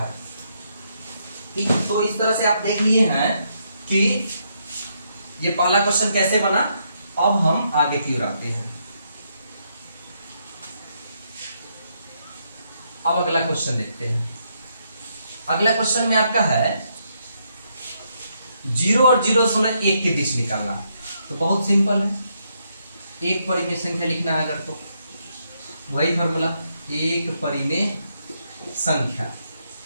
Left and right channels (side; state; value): both; inverted; correlation -0.77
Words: ठीक, तो इस तरह से आप देख लिए हैं कि ये पहला क्वेश्चन कैसे बना। अब हम आगे की ओर आते हैं। अब अगला क्वेश्चन देखते हैं। अगला क्वेश्चन में आपका है 0 और 0.1 के बीच निकालना। तो बहुत सिंपल है, एक परिमेय संख्या लिखना है अगर तो वही फॉर्मूला, एक परिमेय संख्या।